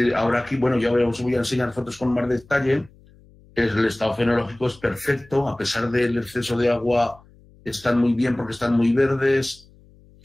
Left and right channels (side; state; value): left; noise; hum, 27 dB below the sound